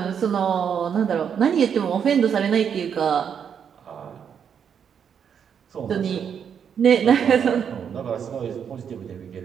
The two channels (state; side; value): quieter; left; 7.7 dB